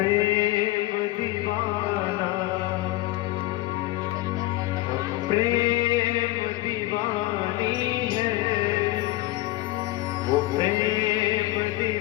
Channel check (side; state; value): right; quieter; 18.0 dB